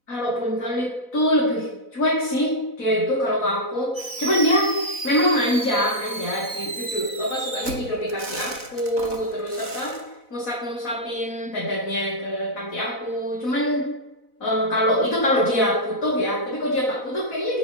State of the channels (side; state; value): right; late; 4.0 ms